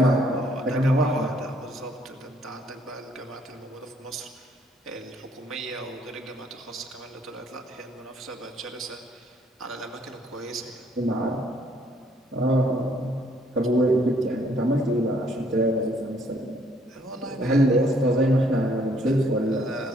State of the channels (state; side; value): normal; both; correlation 0.65